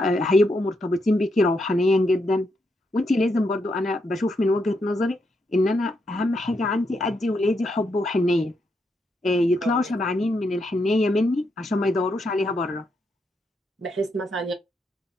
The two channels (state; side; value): normal; both; correlation 0.80